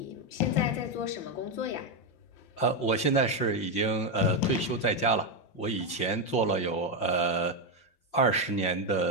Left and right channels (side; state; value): right; late; 5.7 ms